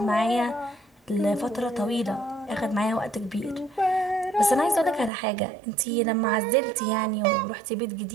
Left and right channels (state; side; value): drops out; left; at 5.1 s